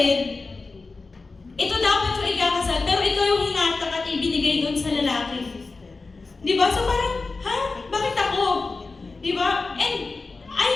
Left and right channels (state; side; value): quieter; right; 3.9 dB